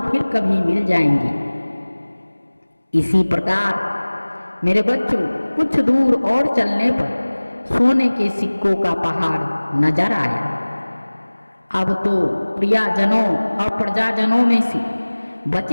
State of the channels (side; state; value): both; inverted; correlation -1.00